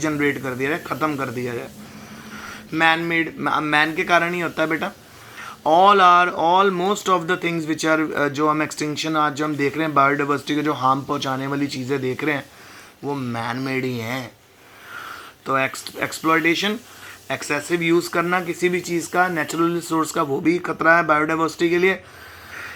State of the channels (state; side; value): identical; both; correlation 1.00